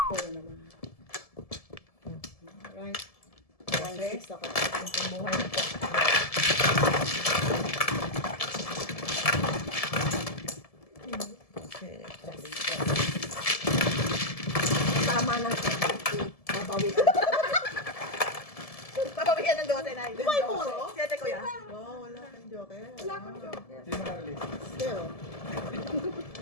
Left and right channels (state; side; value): late; right; 1.7 ms